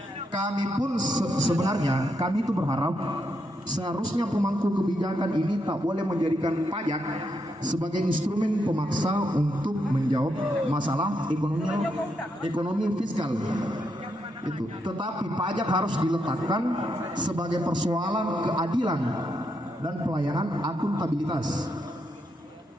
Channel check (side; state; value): both; normal; correlation 0.80